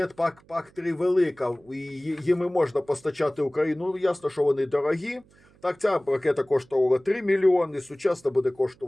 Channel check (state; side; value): noise; right; hum, 29 dB below the sound